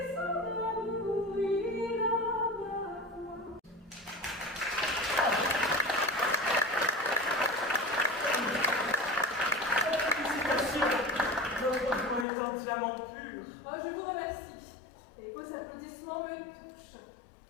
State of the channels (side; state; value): right; drops out; at 12.2 s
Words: diamant pur. Oh, je vous remercie. Et vos applaudissements me touchent.